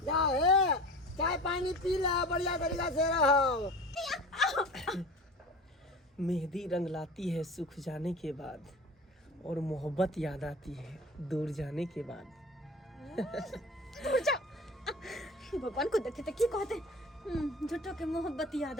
जा हे, चाय पानी पी ले, बढ़िया तरीका से रहो। मेहंदी रंग लाती है सुख जाने के बाद, और मोहब्बत याद आती है दूर जाने के बाद। भगवान को देखते की कहते झूठो के मोहब्बत याद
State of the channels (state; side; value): normal; both; correlation 0.37